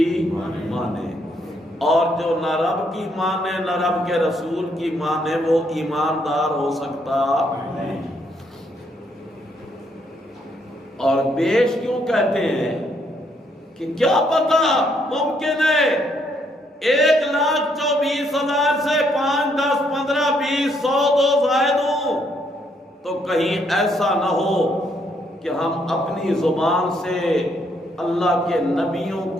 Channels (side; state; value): both; normal; correlation 0.72